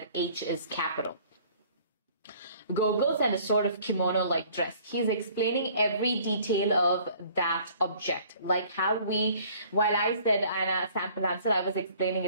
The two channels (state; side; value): inverted; both; correlation -0.55